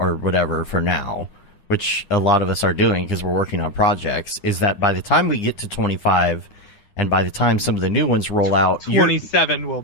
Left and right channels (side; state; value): right; late; 9.9 ms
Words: whatever for now, which a lot of us are doing because we're working on projects, is that by the time we get to 25, and by the time some of the new ones roll out, 27 will